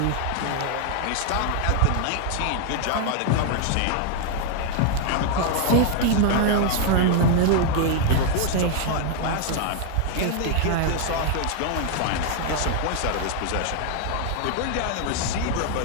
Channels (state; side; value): different; both; correlation 0.00